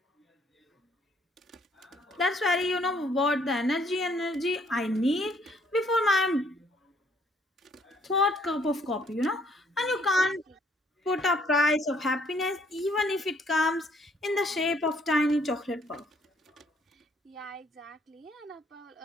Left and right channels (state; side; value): normal; both; correlation 0.65